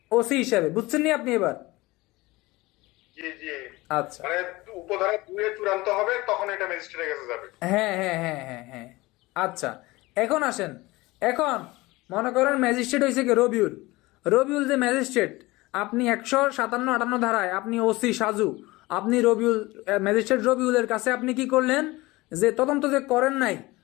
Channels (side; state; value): right; quieter; 20.8 dB